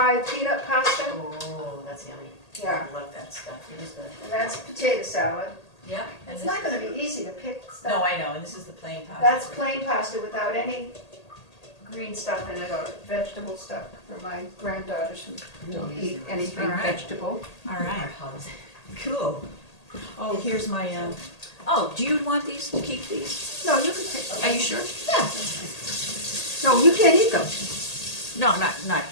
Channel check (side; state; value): right; late; 1.8 ms